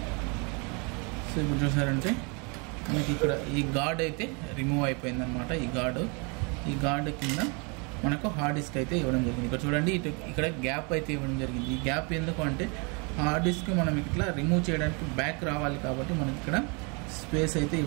సో ఇప్పుడు చూసారంటే మనకి ఇక్కడ ఈ గార్డ్ అయితే రిమూవ్ అయిపోయింది అనమాట. ఈ గార్డు కింద మనకు హార్డ్ డిస్క్ అయితే ఇవ్వడం జరిగింది. ఇక్కడ చూడండి, ఇక్కడ గ్యాప్ అయితే ఇవ్వడం జరిగింది. ఈ గ్యాప్ ఎందుకు అంటే హార్డ్ డిస్క్ మనం ఇట్లా రిమూవ్ చేయడానికి బ్యాక్ రావాలి కాబట్టి మనకి ఇక్కడ స్పేస్ అయితే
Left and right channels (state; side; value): quieter; left; 32.8 dB